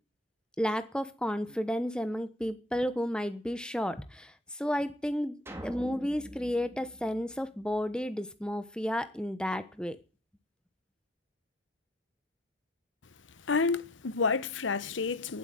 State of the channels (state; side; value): normal; both; correlation 0.62